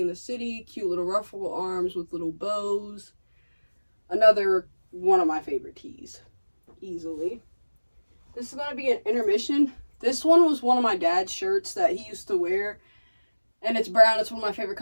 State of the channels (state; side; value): inverted; both; correlation -1.00